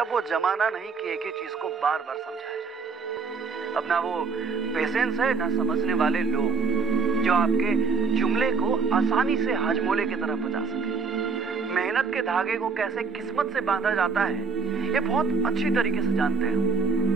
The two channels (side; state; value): left; quieter; 5.2 dB